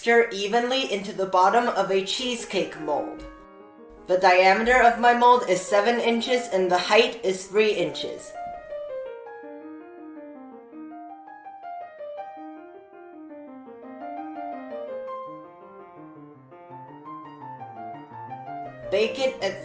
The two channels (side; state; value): both; identical; correlation 1.00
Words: evenly into the bottom of a cheesecake mold. The diameter of my mold is 7 inches and the height is 3 inches. Bake it at